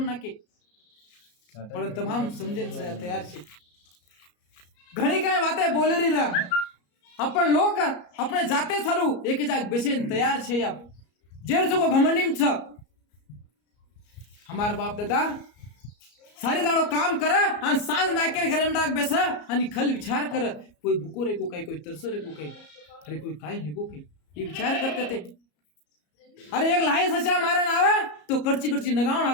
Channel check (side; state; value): right; late; 34 ms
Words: ना के पर तमाम समझे तैयार छे घणी काय वाते बोले रही रहा अपन लोग अपने जाते सारू एक जाग बेसेन तैयार छे आप जेर जो घमंडीम छ हमार बाप दादा सारी दाड़ो काम कर आणि सांज नाकेर घरे में डाक बेस आणि खल विचार कर कोई भूको रे को कोई तरसो रे को अरे कोई काय है को ये विचार करते थे अरे एक लाई सचा मारन आवे तो करची नगावण